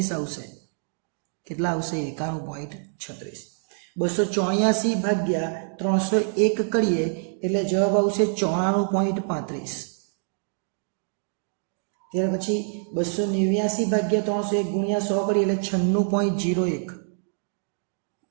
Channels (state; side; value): silent; left; 61 dB below the other